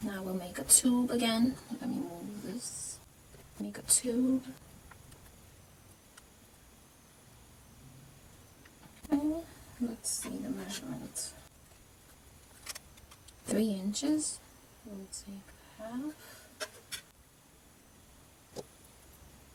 Now we'll make a tube again. Let me move this. Make a tube. Okay, let's see the measurement. 3 inches. We'll take half.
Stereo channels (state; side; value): identical; both; correlation 1.00